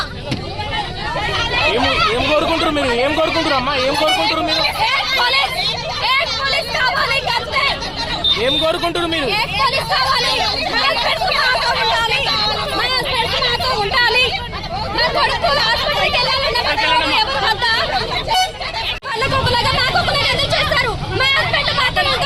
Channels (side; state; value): both; identical; correlation 1.00